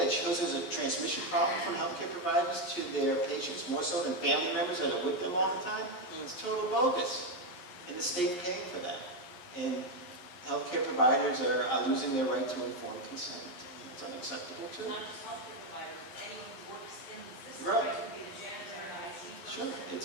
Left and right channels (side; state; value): right; late; 11 ms